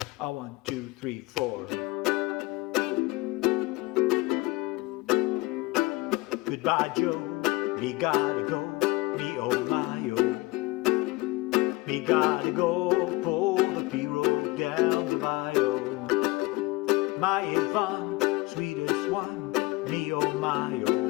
1, 2, 3, 4. Goodbye, Joe. Me gotta go. Me oh my oh. Me gotta go. Pull the P-road down the bayou. My Yvonne, sweetest one. Me oh my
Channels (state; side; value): quieter; right; 21.4 dB